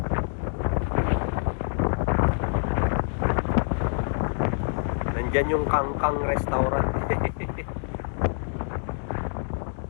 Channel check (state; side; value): silent; right; 61 dB below the other